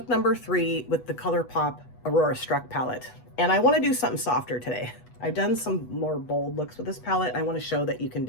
number 3 with the ColourPop Aurora Struck palette. And I want to do something softer today. I've done some more bold looks with this palette. I want to show that you can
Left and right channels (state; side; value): late; right; 8.2 ms